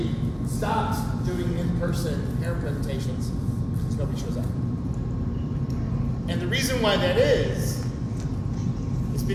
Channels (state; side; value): identical; both; correlation 1.00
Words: stopped doing in-person parent presentations because nobody shows up. And the reason why that is